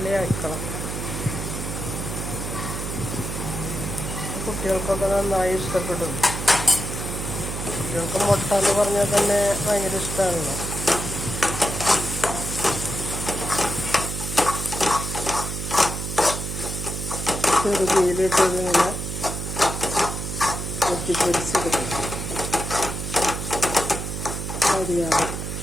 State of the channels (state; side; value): noise; right; hum, 5 dB below the sound